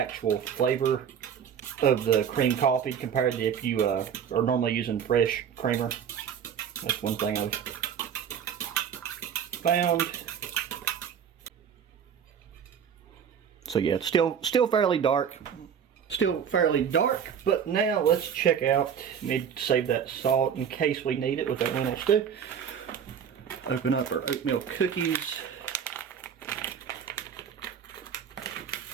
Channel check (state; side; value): quieter; left; 7.9 dB